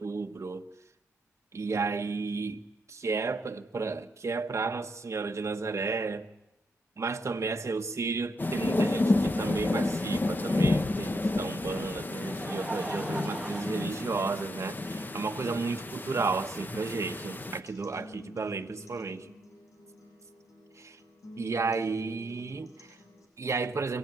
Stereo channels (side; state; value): both; normal; correlation 0.78